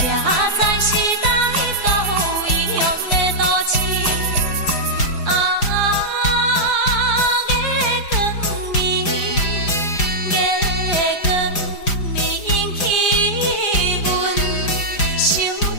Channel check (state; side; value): late; right; 5.0 ms